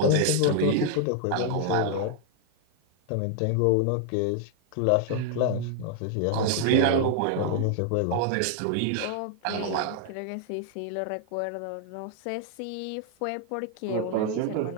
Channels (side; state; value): both; different; correlation 0.00